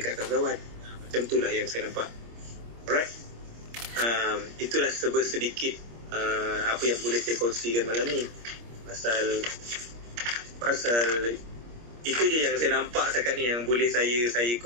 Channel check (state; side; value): late; left; 25 ms